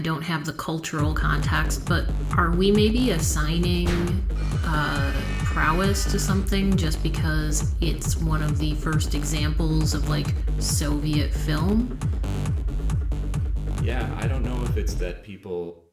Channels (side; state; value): both; identical; correlation 1.00